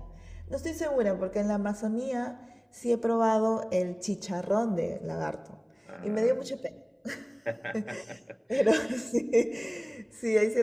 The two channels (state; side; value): identical; both; correlation 1.00